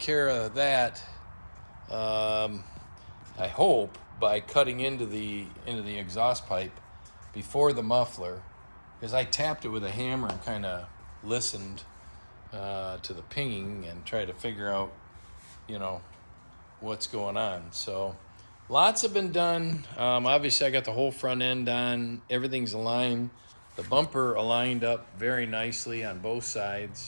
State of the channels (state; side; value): inverted; both; correlation -1.00